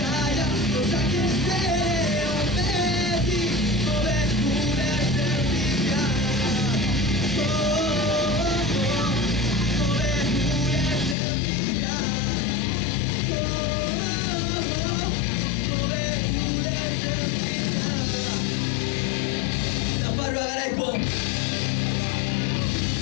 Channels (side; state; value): right; drops out; at 11.2 s